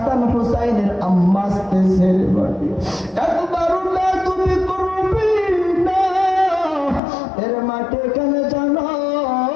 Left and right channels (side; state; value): right; drops out; at 7.0 s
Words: হুসাইনের আম্মা আসতেছে। মাটি একবারও বেয়াদবি করবি না। এর মাটি এখানে জানো